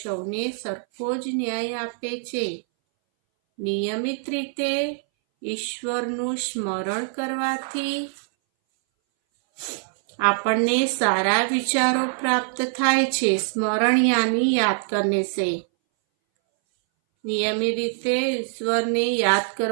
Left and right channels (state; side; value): silent; left; 61 dB below the other